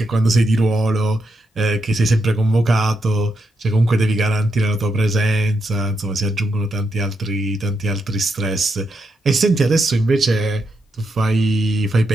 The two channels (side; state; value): both; normal; correlation 0.82